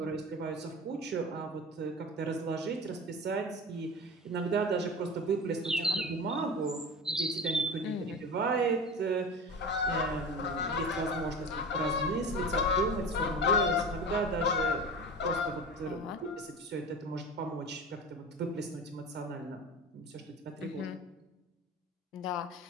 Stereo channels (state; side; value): normal; both; correlation 0.32